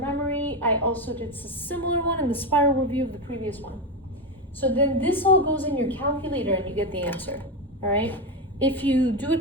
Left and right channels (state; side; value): normal; both; correlation 0.12